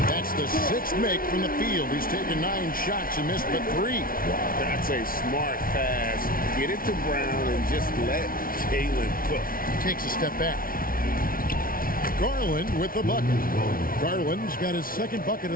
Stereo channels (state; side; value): late; right; 0.42 ms